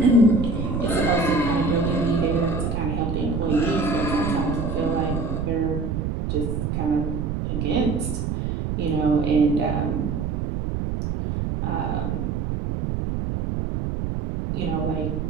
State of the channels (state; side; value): noise; right; rumble, 2 dB below the sound